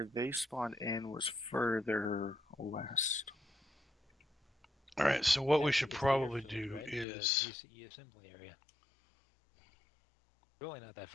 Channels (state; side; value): drops out; right; at 7.1 s